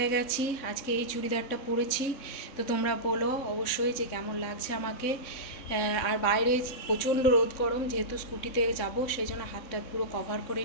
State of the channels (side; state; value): right; late; 3.6 ms